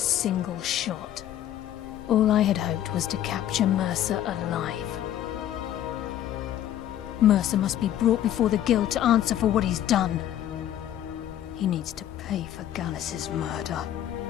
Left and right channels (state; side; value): quieter; right; 11.6 dB